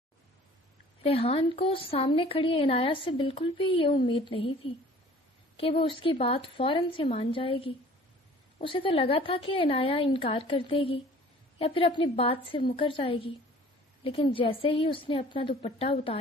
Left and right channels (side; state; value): both; normal; correlation 0.49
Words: ریحان کو سامنے کھڑی عنایت سے بالکل بھی یہ امید نہیں تھی کہ وہ اس کی بات فوراً سے مان جائے گی۔ اسے تو لگا تھا کہ عنایت انکار کر دے گی یا پھر اپنی بات سے مکر جائے گی، لیکن جیسے ہی اس نے اپنا دوپٹہ